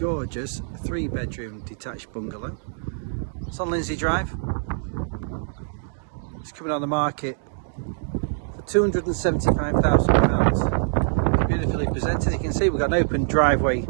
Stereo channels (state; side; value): silent; left; digital silence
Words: 3-bedroom detached bungalow. It's on Lindsey Drive. It's coming on the market for £275,000. It's beautifully presented. You can see we've got an open driveway